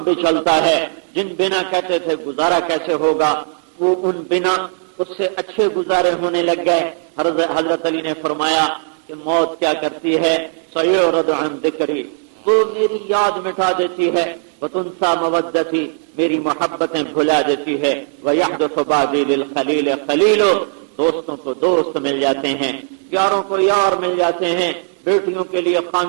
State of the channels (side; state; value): left; silent; digital silence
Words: بھی چلتا ہے، جن بنا کہتے تھے گزارا کیسے ہوگا، وہ ان بنا اس سے اچھے گزارے ہونے لگ گئے۔ حضرت علی نے فرمایا کہ موت کیا کرتی ہے؟ سیعرض عن ذکری، وہ میری یاد مٹا دیتی ہے، وتنسى مودتی، میری محبتیں بھلا دیتی ہے، ویحدث بعدی للخلیل خلیل، دوستوں کو دوست مل جاتے ہیں، یاروں کو یار مل جاتے ہیں، بیٹیوں کے لیے